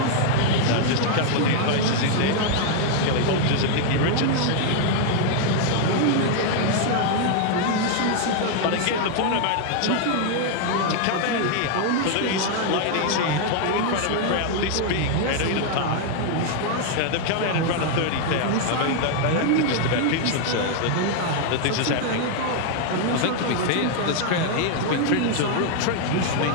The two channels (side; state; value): both; different; correlation 0.00